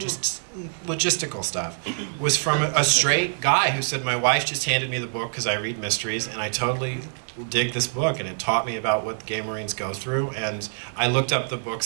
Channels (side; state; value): left; silent; digital silence